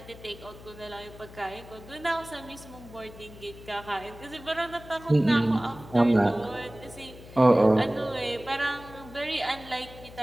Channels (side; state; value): left; noise; hum, 18 dB below the sound